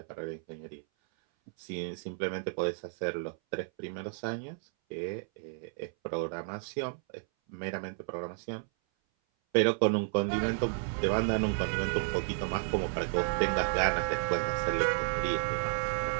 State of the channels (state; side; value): silent; left; 56 dB below the other